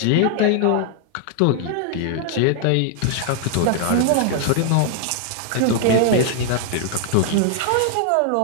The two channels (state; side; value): different; both; correlation 0.00